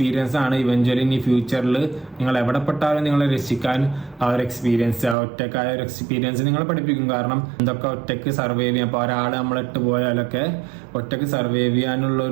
ആണ് ഇവഞ്ച്വലി ഇനി ഫ്യൂച്ചറിൽ നിങ്ങൾ എവിടെ പെട്ടാലും നിങ്ങളെ രക്ഷിക്കാൻ ആ ഒരു എക്സ്പീരിയൻസ്, ആ ഒറ്റക്കായ ഒരു എക്സ്പീരിയൻസ് നിങ്ങളെ പഠിപ്പിക്കും. കാരണം എന്തൊക്കെ ഒറ്റയ്ക്ക് സർവൈവ് ചെയ്യാം. അപ്പോൾ ഒരാൾ നമ്മളിട്ട് പോയാലൊക്കെ ഒറ്റയ്ക്ക് സർവൈവ്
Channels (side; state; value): left; drops out; at 5.2 s